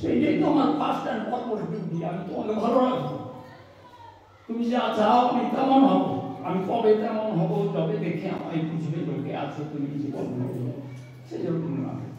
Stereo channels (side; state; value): both; identical; correlation 1.00